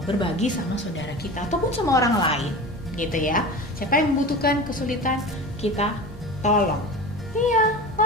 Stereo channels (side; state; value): both; normal; correlation 0.32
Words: berbagi sama saudara kita ataupun sama orang lain, gitu ya. Siapa yang membutuhkan kesulitan, kita tolong. Iya,